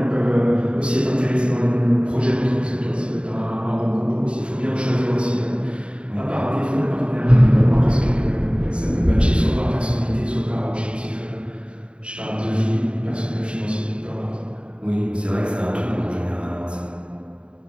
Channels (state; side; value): late; left; 0.055 ms